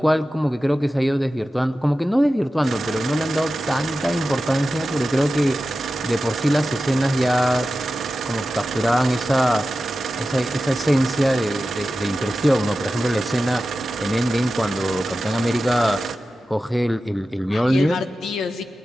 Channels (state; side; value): normal; both; correlation 0.93